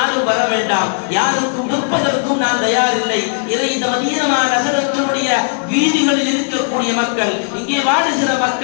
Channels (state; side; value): silent; right; digital silence